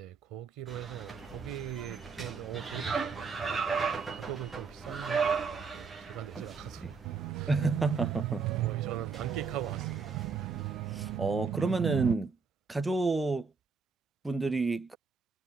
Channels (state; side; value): quieter; left; 5.0 dB